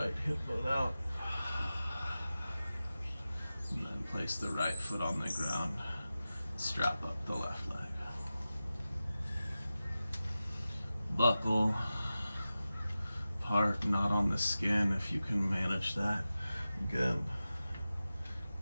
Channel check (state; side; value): inverted; both; correlation -0.95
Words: hip bone out, and then place the right foot on the ground. Strap up the left leg. Buckle, part not on the skin if you can manage that. Again,